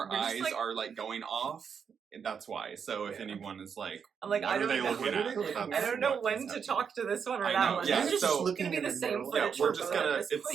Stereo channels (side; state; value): left; quieter; 6.8 dB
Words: eyes are going off, that's why. So if anyone is like, I'm like, what are they looking at? I don't know when to talk to this one or that one. Yeah, it's so just looking at the same footage. We're just gonna.